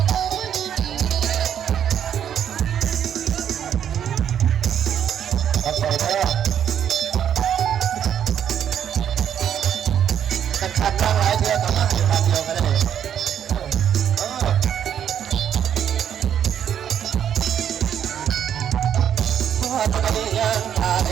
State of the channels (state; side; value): quieter; left; 9.3 dB